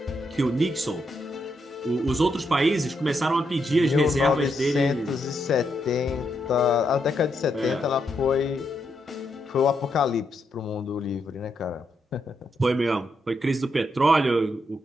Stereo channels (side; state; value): both; normal; correlation 0.80